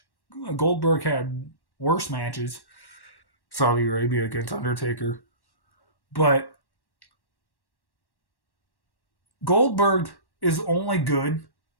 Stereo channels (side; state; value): right; late; 1.1 ms